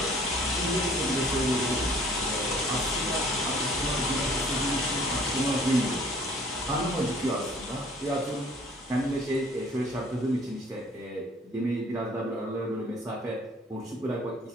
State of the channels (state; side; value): normal; both; correlation 0.54